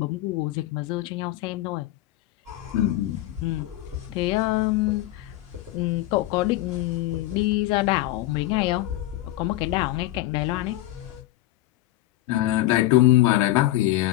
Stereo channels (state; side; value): quieter; right; 16.0 dB